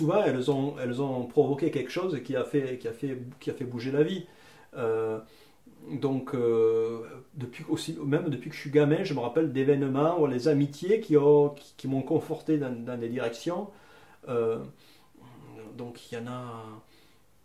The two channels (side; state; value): both; identical; correlation 1.00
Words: elles ont provoqué quelque chose qui a fait bouger la vie. Euh, Donc, même depuis que je suis gamin, je me rappelle d'événements ou les amitiés qui m'ont conforté dans des directions. Euh, donc, il y en a